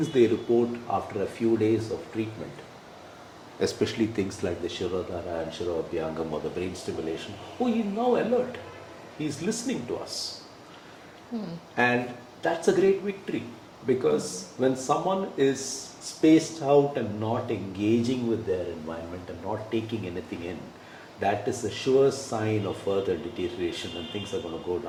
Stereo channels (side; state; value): both; identical; correlation 1.00